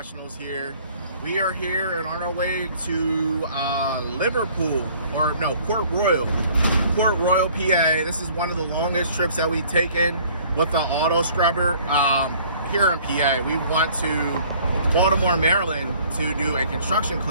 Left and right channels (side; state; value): both; inverted; correlation -0.55